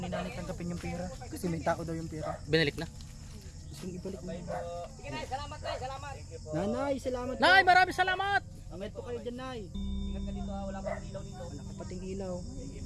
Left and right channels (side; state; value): both; identical; correlation 1.00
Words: nanay tanggapin yung pera. Kasi may tao daw yung pera. Binalik na. Gusto nyo ibalik mo. Sige nay, salamat nay, salamat. Nanay, salamat. Nay, maraming salamat! Amet po kayo dyan, nay. Ingat ka dito ha, wala pang ilaw dito. Wala ka pating ilaw. Sige